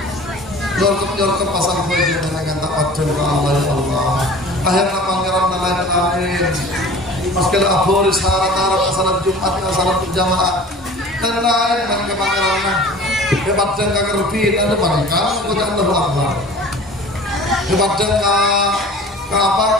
nyorkep pasang baju dengan tak adil ke Allah ya Allah akhirnya pangeran lain maskala aboris harat-harat salat Jumat salat berjamaah dan lain dengan pangeran hebat dan kagerbin ada pangeran kepada Allah Akbar hebat dan apa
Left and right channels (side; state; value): both; normal; correlation 0.43